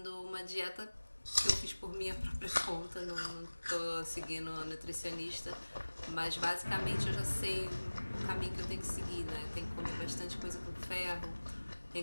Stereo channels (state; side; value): inverted; both; correlation -1.00